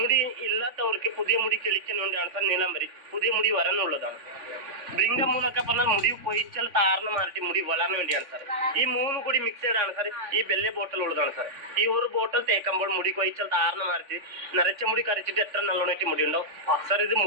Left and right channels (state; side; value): late; left; 3.4 ms